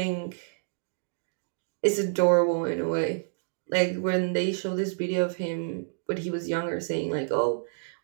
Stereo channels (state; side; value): silent; left; digital silence